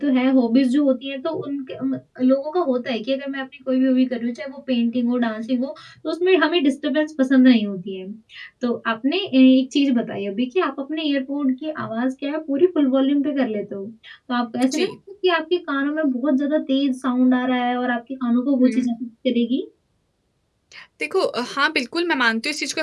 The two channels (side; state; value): both; identical; correlation 1.00